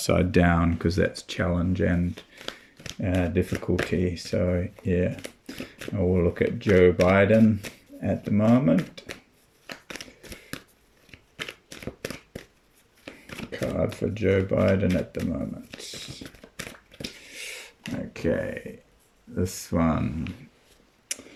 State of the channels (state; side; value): identical; both; correlation 1.00